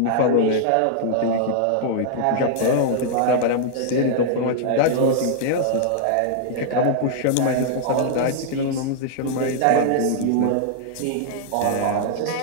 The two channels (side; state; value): both; different; correlation -0.01